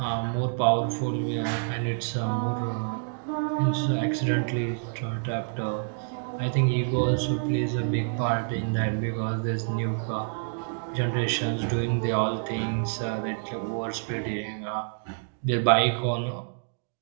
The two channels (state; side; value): silent; left; digital silence